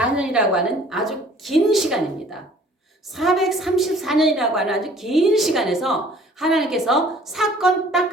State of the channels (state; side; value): normal; both; correlation 0.53